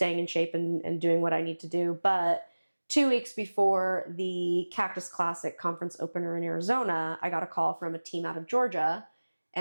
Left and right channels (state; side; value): inverted; both; correlation -1.00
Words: in shape and doing what I need to do. But 2 weeks before the Cactus Classic conference opener in Arizona, I got a call from a team out of Georgia.